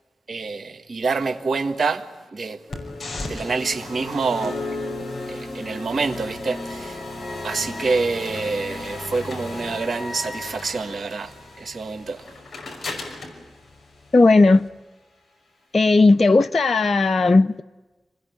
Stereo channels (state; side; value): normal; both; correlation 0.91